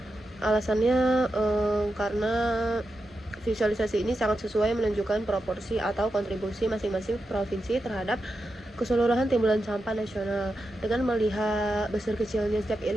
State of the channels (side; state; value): both; normal; correlation 0.88